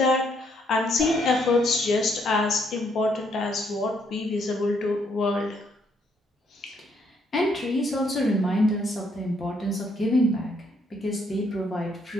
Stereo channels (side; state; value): both; normal; correlation 0.71